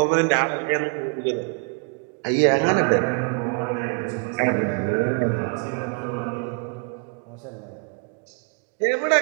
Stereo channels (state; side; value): quieter; left; 35.9 dB